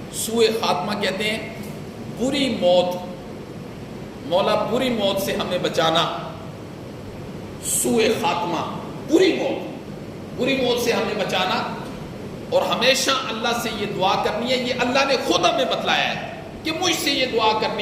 سوء خاتمہ کہتے ہیں بری موت۔ مولا بری موت سے ہمیں بچانا۔ سوء خاتمہ بری موت سے ہمیں بچانا، اور ہمیشہ اللہ سے یہ دعا کرنی ہے۔ یہ اللہ نے خود ہمیں بتلایا ہے کہ مجھ سے یہ دعا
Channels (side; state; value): both; identical; correlation 1.00